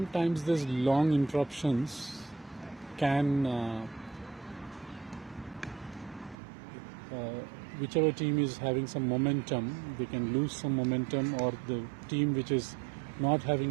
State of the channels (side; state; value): left; drops out; at 6.4 s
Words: these long interruptions can, whichever team is having some momentum, they can lose some momentum, or the team which is not